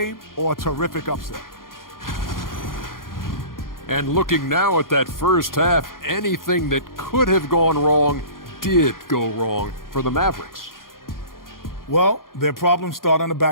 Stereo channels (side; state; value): right; late; 0.91 ms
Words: or a terrific upset. And looking now at that first half, anything that could have gone wrong did go wrong for the Mavericks. Well, their problems start on the